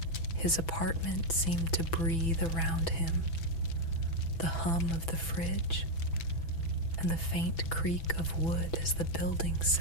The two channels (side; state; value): right; late; 6.0 ms